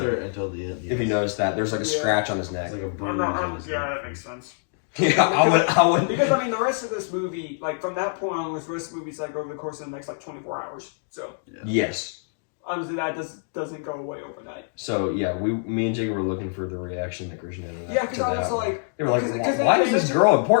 movie until the end. Yes. If you notice that, there's a scratch on his neck. It's like a bruise. That makes sense. Yeah, I would. Because the rest of this movie, from that point on, the rest of the movie's over the course of the next 24 hours. So yes, obviously that doesn't go away overnight. So yeah, me and Jacob were looking for the reaction that Christian had. Yeah, because I was they were why is this girl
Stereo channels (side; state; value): right; silent; digital silence